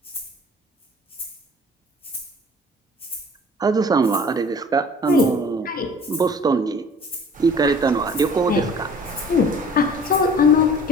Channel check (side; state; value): both; normal; correlation 0.47